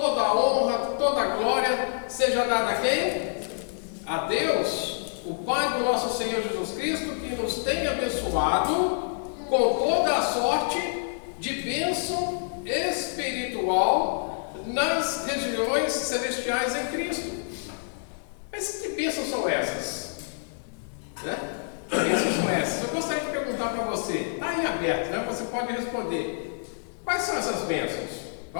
a honra, toda a glória seja dada a quem? A Deus, o Pai do nosso Senhor Jesus Cristo, que nos tem abençoado com toda a sorte de bênção espiritual nas regiões celestiais em Cristo. Mas que bênçãos são essas? Né? Que bênçãos são essas? Eu gostaria de perguntar para você, está aí aberto, né? Você pode responder. Quais são essas bênçãos?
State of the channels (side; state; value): right; silent; digital silence